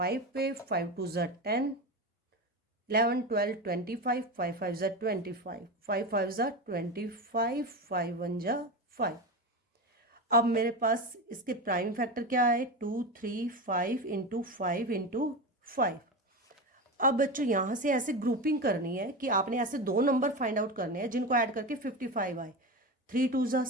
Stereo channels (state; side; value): normal; both; correlation 0.21